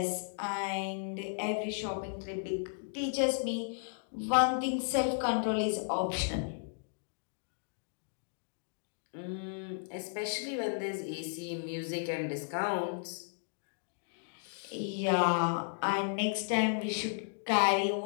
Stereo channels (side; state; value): right; silent; digital silence